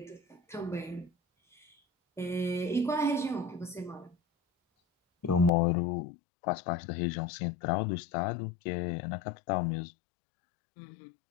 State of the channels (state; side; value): drops out; right; at 5.5 s